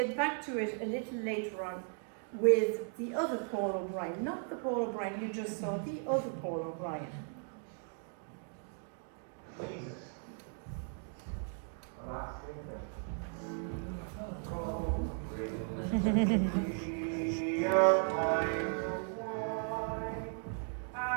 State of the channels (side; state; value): left; silent; 53 dB below the other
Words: back to it a little later on with the other Paul O'Brien, not the Paul O'Brien you just saw, the other Paul O'Brien.